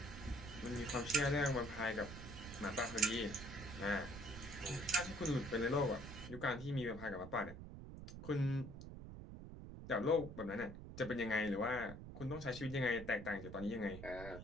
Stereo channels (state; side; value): noise; right; rumble, 11 dB below the sound